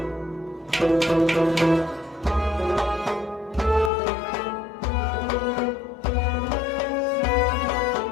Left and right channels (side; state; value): right; drops out; at 3.9 s